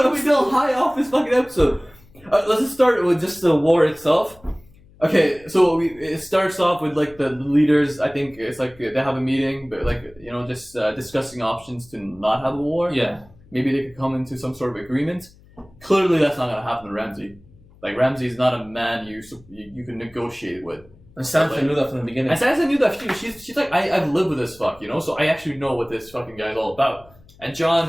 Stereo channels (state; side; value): noise; left; hum, 26 dB below the sound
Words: still high off this fucking episode. Let's just start with just the war itself. Okay, so it starts off with like the leaders. I think it's like they have a meeting, but like just discussing options to not have a war. Yeah. Maybe they could come into some sort of agreement. Clearly, that's not gonna happen to Ramsay. Like Ramsay is not a man you can negotiate with. And Sansa knew that from the beginning. And Sansa knew that too. She's like, I've lived with this fuck, so I actually know what this fucking guy is all about. And